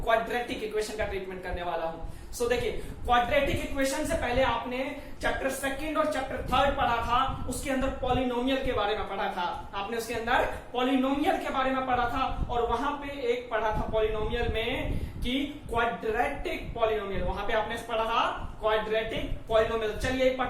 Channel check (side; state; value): both; identical; correlation 1.00